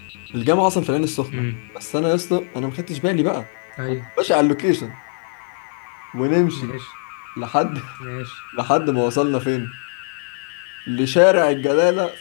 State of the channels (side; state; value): right; silent; 59 dB below the other